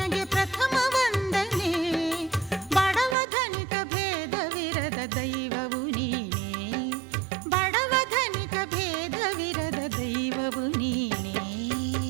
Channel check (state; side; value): drops out; left; at 3.2 s